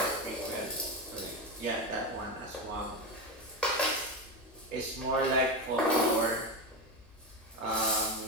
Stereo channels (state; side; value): normal; both; correlation 0.16